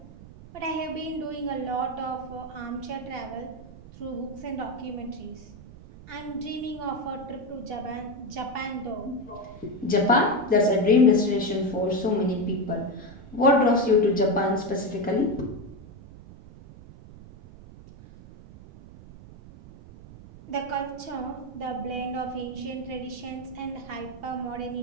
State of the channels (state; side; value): noise; right; rumble, 18 dB below the sound